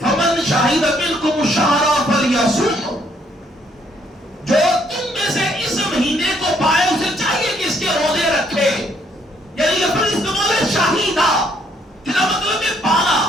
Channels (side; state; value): both; normal; correlation 0.68